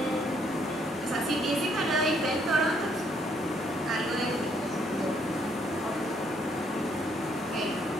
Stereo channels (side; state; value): both; normal; correlation 0.69